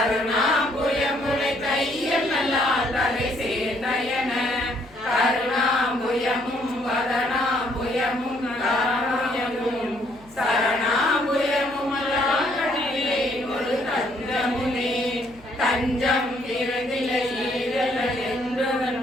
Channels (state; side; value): noise; left; hum, 25 dB below the sound